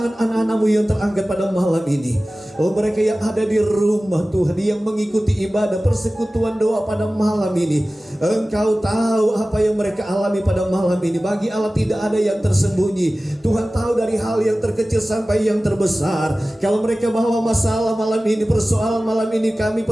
anak-anakmu yang terangkat pada malam ini. Oh, mereka yang ada di rumah Tuhan, yang mengikuti ibadah persekutuan doa pada malam ini. Engkau tahu apa yang mereka alami pada malam ini. Bagi Allah tidak ada yang tersembunyi. Tuhan tahu dari hal yang terkecil sampai yang terbesar. Kalau mereka bawa masalah malam ini, persoalan malam ini, kami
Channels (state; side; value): normal; both; correlation 0.97